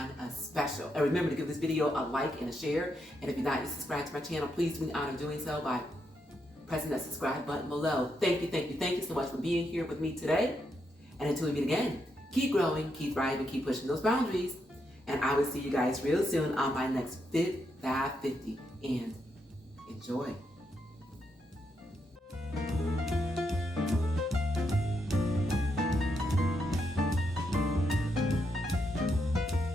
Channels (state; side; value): normal; both; correlation 0.81